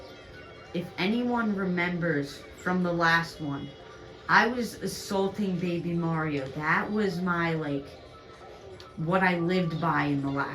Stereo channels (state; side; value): identical; both; correlation 1.00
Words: If anyone remembers from the last one, I was assaulting Baby Mario. That was my, like, what I lived by in the